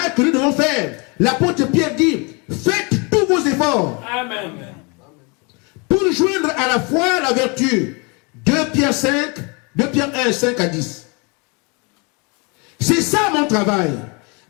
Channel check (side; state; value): right; quieter; 31.1 dB